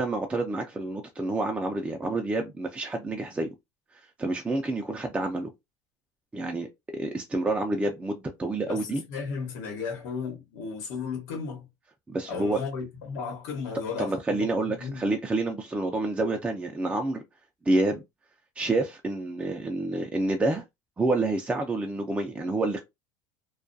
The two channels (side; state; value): both; normal; correlation 0.72